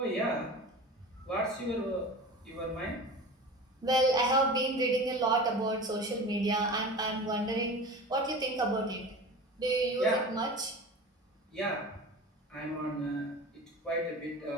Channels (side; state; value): both; normal; correlation 0.34